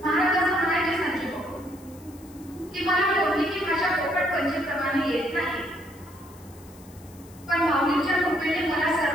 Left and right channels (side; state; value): left; noise; hiss, 24 dB below the sound